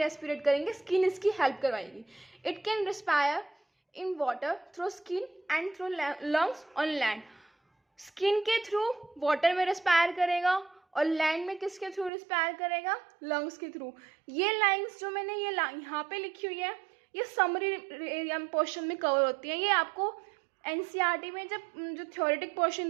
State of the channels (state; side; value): drops out; left; at 12.1 s